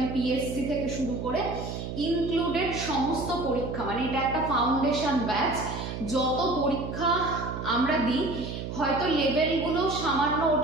পিএসসি থেকে শুরু করে ইনক্লুডেড সমস্ত পরীক্ষা, মানে এটা একটা ফাউন্ডেশন ব্যাচ, যত পরীক্ষা আমরা দিই, হয়তো লেভেলগুলো সামান্য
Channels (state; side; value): noise; right; hum, 6 dB below the sound